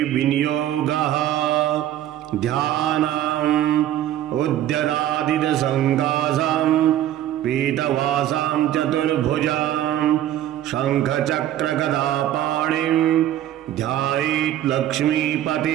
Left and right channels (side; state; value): left; quieter; 12.3 dB